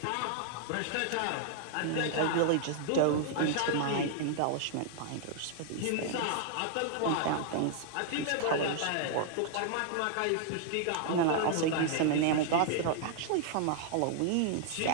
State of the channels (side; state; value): both; different; correlation -0.01